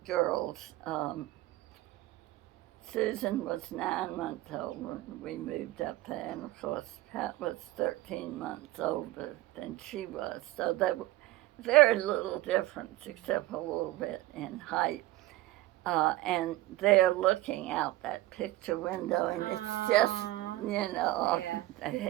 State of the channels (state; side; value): quieter; left; 16.9 dB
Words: girls. Susan was 9 months old when we moved up there, and of course Pat was 13 months older than she was. So there was very little difference except a little bit in height. And they're looking out that picture window, and it's just, off the